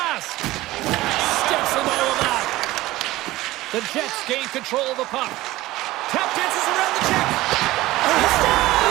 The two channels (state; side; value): quieter; left; 17.7 dB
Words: Steps in all of that. The Jets gain control of the puck. Tap dances around the check. And he